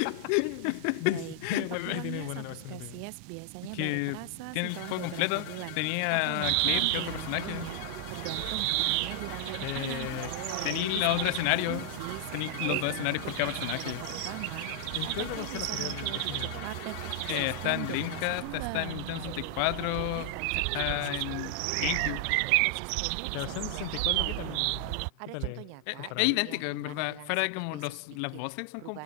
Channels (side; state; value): both; different; correlation 0.00